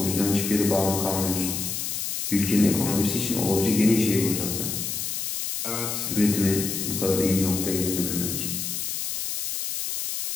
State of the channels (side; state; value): left; noise; hiss, 3 dB below the sound